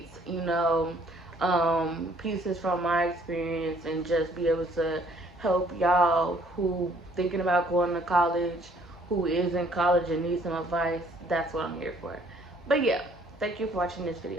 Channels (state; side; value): normal; both; correlation 0.61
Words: pieces from my experience, and just be able to help y'all who thinking about going to college, who is in college and needs some advice. That's what I'm here for. But yeah, thank you for watching this